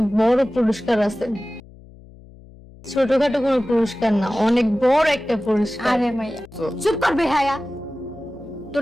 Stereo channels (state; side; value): noise; left; hum, 22 dB below the sound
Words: বড় পুরস্কার আছে। ছোটখাটো কোনো পুরস্কার না, অনেক বড় একটা পুরস্কার। আরে মাইয়া চুপ কর বেহায়া। তোর